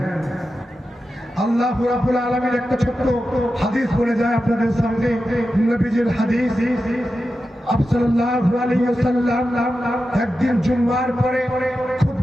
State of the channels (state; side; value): normal; both; correlation 0.91